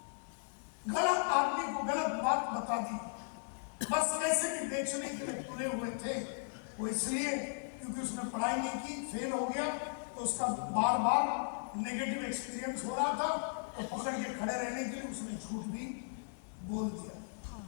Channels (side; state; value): right; silent; digital silence